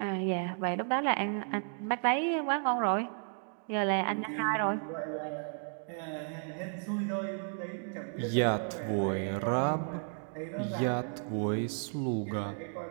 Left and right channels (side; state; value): left; silent; 56 dB below the other